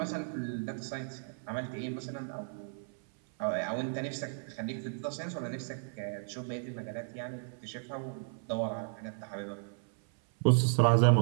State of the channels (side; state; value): left; silent; 55 dB below the other